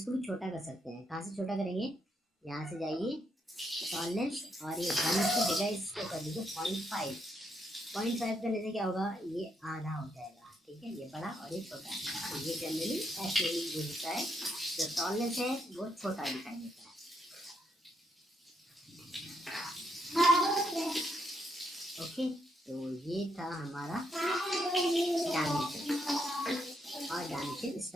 भी छोटा कर सकते हैं। कहाँ से छोटा करेंगे, यहाँ से जाइए टॉलरेंस और ये 1 की जगह इसको कर दीजिए 0.5 करने से क्या होगा, ये आधा हो जाएगा, ठीक है। ये बड़ा और ये छोटा, तो ये जनरली ऐसे ही यूज होता है, जो टॉलरेंस है वो छोटा दिखाई देता है। ओके, तो ये था हमारा डायमेंशन और डायमेंशन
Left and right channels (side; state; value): both; normal; correlation 0.77